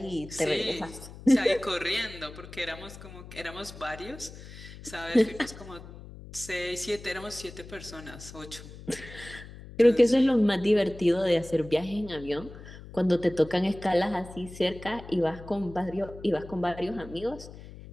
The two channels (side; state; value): left; noise; hum, 15 dB below the sound